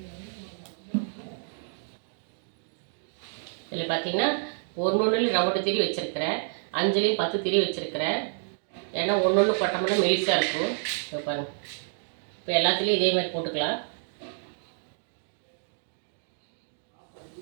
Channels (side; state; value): left; silent; digital silence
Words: இதில் பார்த்தீங்கன்னா ஒன்று ரவுண்டு திரி வச்சுருக்கிறேன், 5லையும் 10 திரி வச்சுருக்கிறேன். ஏன்னா ஒன்று போட்டோம்னா மெலிசாக இருக்கும். இப்போ பாருங்கள், இப்போ எல்லாத்துலேயும் இதே மாதிரி போட்டுக்கலாம்.